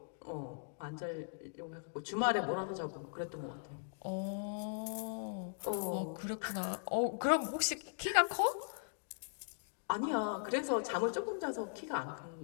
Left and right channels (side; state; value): right; silent; digital silence